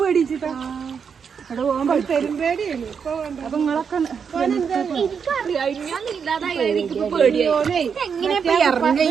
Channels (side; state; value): left; quieter; 6.6 dB